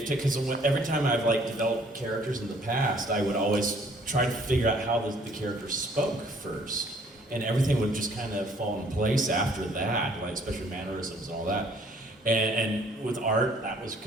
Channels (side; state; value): both; normal; correlation 0.60